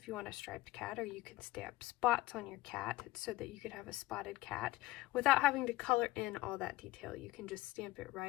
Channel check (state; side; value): quieter; right; 18.5 dB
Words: you want a striped cat, or you can stamp spots on your cat so that you could have a spotted cat without having to color in all that detail. You can just stamp it